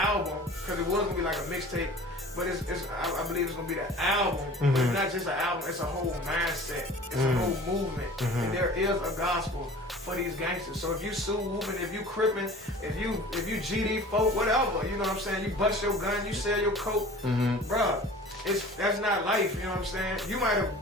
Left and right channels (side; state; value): both; normal; correlation 0.43